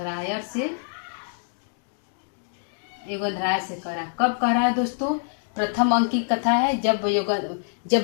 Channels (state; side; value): silent; right; digital silence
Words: योगेंद्राय से कह रहा है। कब कह रहा है दोस्तों? प्रथम अंक की कथा है, जब